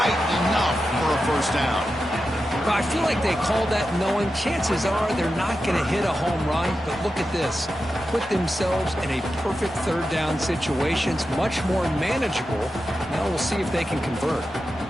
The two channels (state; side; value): noise; right; hum, 29 dB below the sound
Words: enough for a first down. Well, I feel like they called that knowing chances are they're not going to hit a home run, but look at this. Put themselves in a perfect third down situation. It's much more manageable. Now we'll see if they can convert.